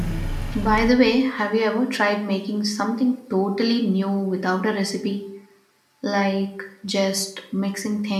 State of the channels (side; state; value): both; identical; correlation 1.00